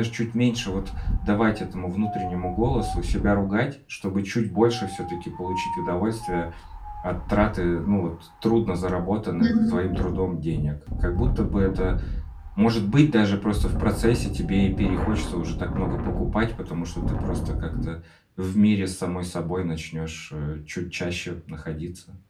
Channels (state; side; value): identical; both; correlation 1.00